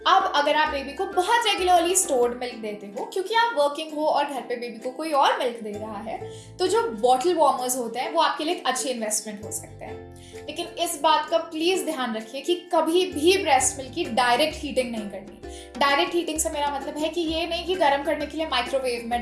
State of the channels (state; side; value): identical; both; correlation 1.00